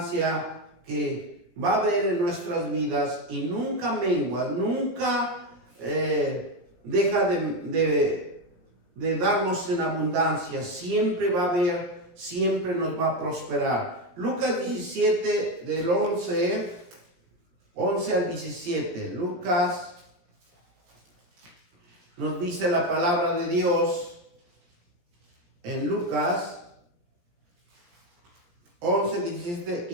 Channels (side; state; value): left; late; 17 ms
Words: que va a haber en nuestras vidas y nunca mengua, nunca deja de darnos en abundancia, siempre va a haber, siempre nos va a prosperar. Lucas 17 del 11 al 17. Lucas nos dice la palabra de Dios en Lucas 11, 17,